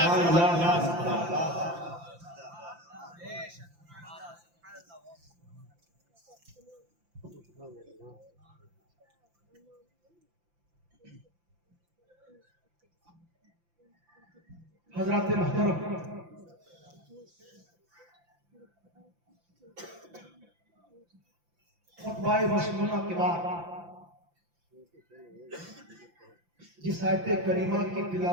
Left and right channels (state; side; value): late; left; 5.8 ms